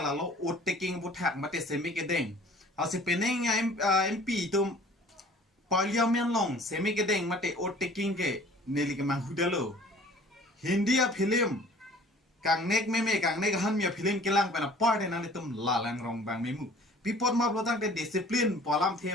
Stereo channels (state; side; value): normal; both; correlation 0.50